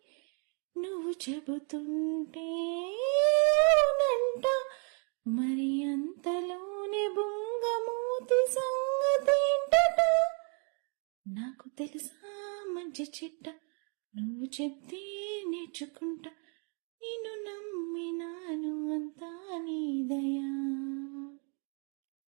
నువ్వు చెబుతుంటే అవునంట. మరి అంతలోనే బొంగమూతి సంగతేంటట. నాకు తెలుసా మంచి చెడ్డ, నువ్వు చెప్తే నేర్చుకుంటా. నిన్ను నమ్మినాను అంతా నీ దయా.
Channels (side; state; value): left; quieter; 39.8 dB